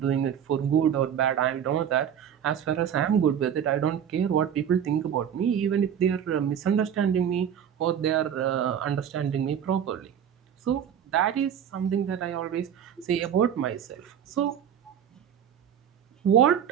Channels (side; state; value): left; quieter; 8.9 dB